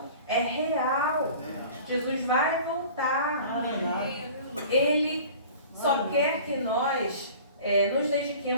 é real. Jesus vai voltar. Ele só quer que nós nos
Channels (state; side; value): inverted; both; correlation -0.43